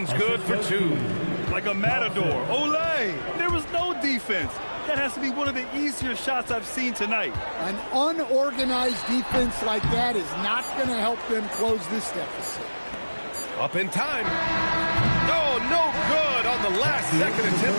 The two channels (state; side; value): inverted; both; correlation -1.00